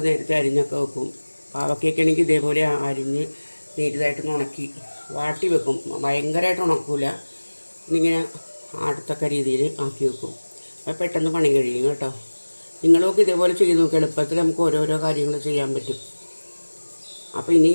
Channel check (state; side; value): inverted; both; correlation -1.00